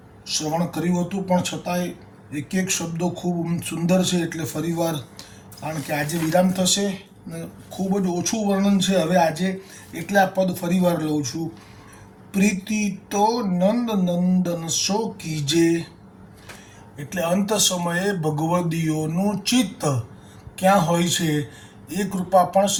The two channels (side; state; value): both; identical; correlation 1.00